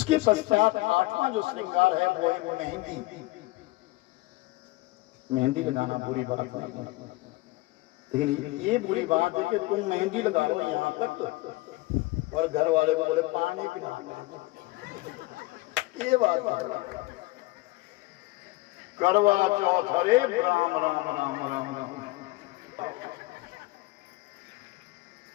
पश्चात 8वां जो श्रृंगार है वो है मेहंदी। मेहंदी लगाना बुरी बात नहीं है, लेकिन ये बुरी बात है कि तुम मेहंदी लगा लो यहाँ तक और घर वाले को बोले पानी पिला, ये बात है। करवा चौथ, हरे राम राम राम राम राम।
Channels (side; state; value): right; quieter; 21.0 dB